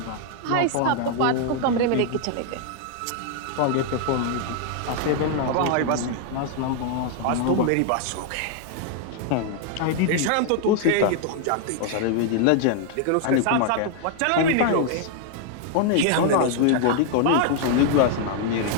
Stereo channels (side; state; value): both; different; correlation 0.00